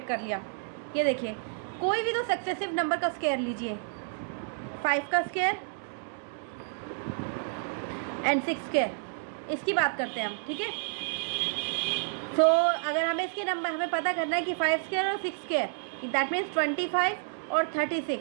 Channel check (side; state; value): left; silent; digital silence